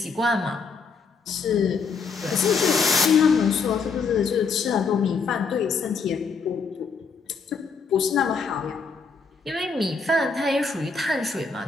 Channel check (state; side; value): quieter; right; 5.0 dB